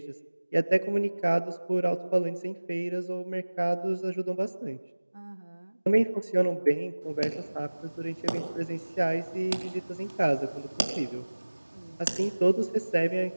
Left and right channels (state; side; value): inverted; both; correlation -1.00